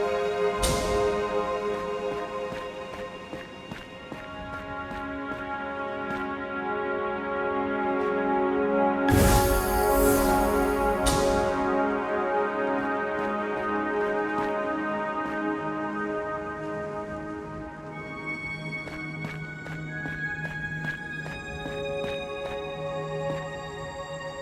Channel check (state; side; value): identical; both; correlation 1.00